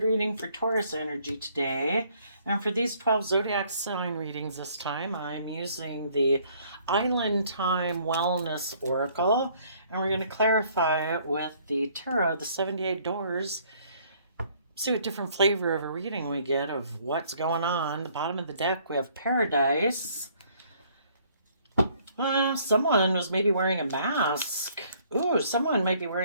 reading for Taurus energy today. And for these 12 zodiac sign readings this time, I'm using the Island Time Wellness Oracle. And we're going to clarify it with the tarot, the 78 doors. See what different flavor of a reading we get of what's going on. The bottom of the deck, we have Paradise. Someone was maybe wearing a mask. Ooh, someone might be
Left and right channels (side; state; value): both; inverted; correlation -0.62